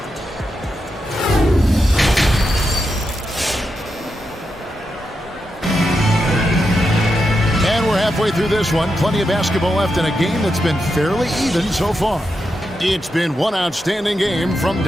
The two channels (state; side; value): normal; both; correlation 0.86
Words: And we're halfway through this one. Plenty of basketball left in a game that's been fairly even so far. It's been one outstanding game from